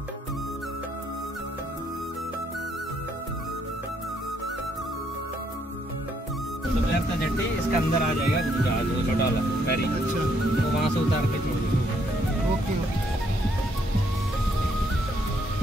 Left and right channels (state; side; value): normal; both; correlation 0.71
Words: का जट्टी इसका अंदर आ जाएगा जहाज, वो छोटा वाला फेरी। अच्छा तो वहाँ से उतार के छोड़ दो। Okay okay.